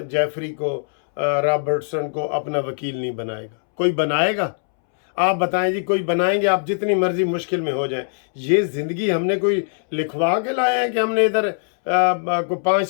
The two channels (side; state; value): right; silent; 65 dB below the other